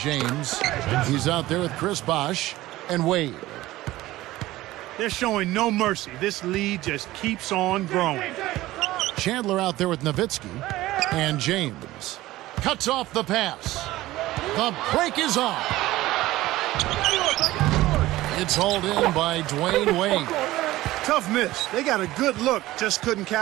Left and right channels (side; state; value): left; quieter; 16.9 dB